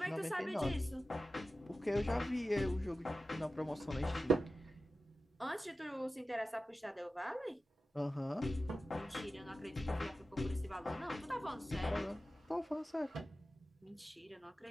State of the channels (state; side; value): normal; both; correlation 0.94